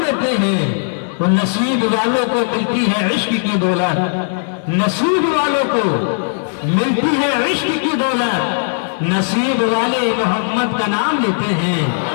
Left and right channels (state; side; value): silent; right; digital silence